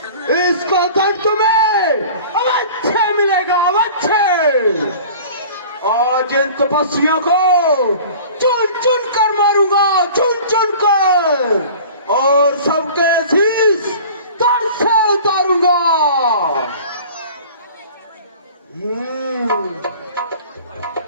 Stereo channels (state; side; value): inverted; both; correlation -0.43